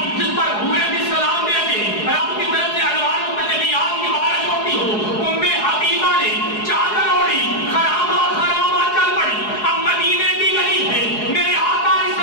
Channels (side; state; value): right; late; 4.8 ms